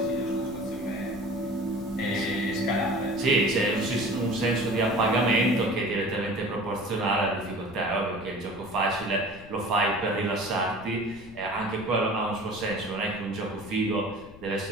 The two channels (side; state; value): left; noise; rumble, 19 dB below the sound